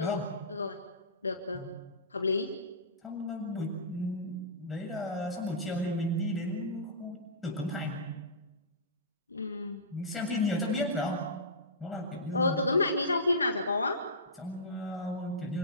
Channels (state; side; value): normal; both; correlation -0.19